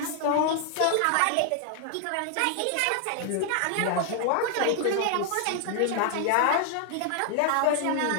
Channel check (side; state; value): both; different; correlation 0.00